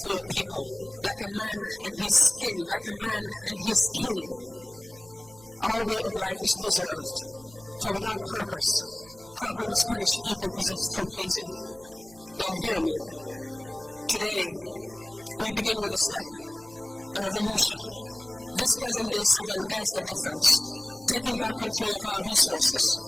your people. Like a man and his skin, like a man and his kin. Our way of life is preserved, for without purpose, problems punish people possessed through pleasing. Now hear me. Today, we begin with a step, a revolution. This present day Sahel airs the difference, taking back control of our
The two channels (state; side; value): noise; right; hum, 25 dB below the sound